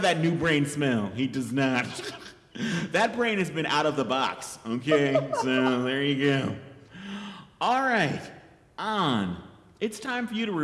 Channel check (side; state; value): both; identical; correlation 1.00